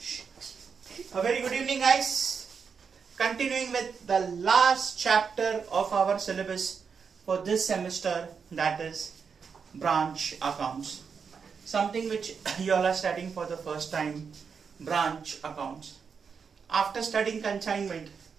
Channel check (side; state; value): left; quieter; 6.0 dB